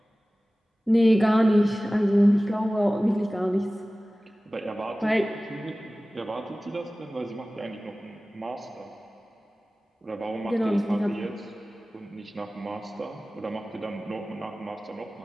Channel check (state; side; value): normal; both; correlation 0.97